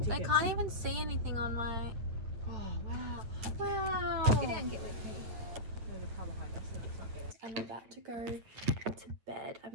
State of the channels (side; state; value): left; late; 8.9 ms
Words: I can't even see anything on my... Oh, wow. Wow! Get down and get with me. I'm about to go to bed.